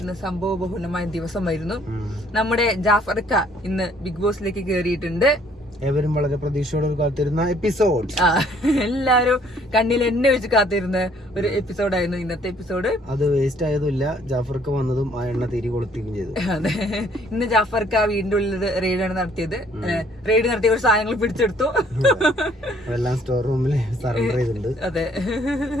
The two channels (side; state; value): both; normal; correlation 0.62